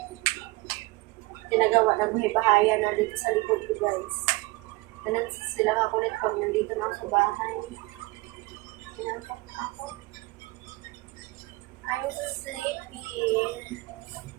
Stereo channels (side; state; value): left; quieter; 22.7 dB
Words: ginagawa, nagbuhay-bahaya na dito sa likod ko, guys. Ganun sila kakulit pag nandito na ako sa bahay. Pinantok na ako. I'm so sleepy.